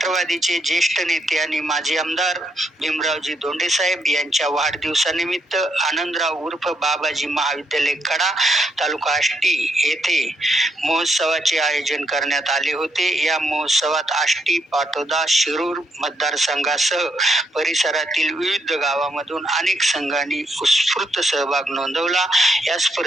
ज्येष्ठ नेते आणि माजी आमदार भीमरावजी धोंडे साहेब यांच्या वाढदिवसानिमित्त आनंदराव उर्फ बाबाजी महाविद्यालय कडा, तालुका आष्टी येथे महोत्सवाचे आयोजन करण्यात आले होते. या महोत्सवात आष्टी, पाटोदा, शिरूर मतदारसंघासह परिसरातील विविध गावामधून अनेक संघांनी उत्स्फूर्त सहभाग नोंदवला. या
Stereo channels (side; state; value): both; normal; correlation 0.77